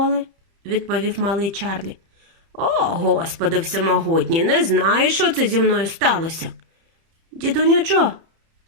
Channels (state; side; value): late; left; 30 ms